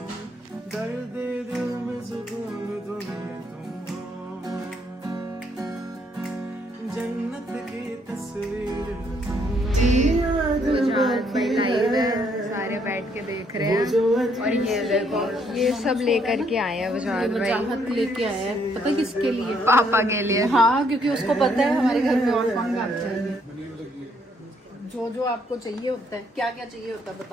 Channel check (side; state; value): both; normal; correlation 0.70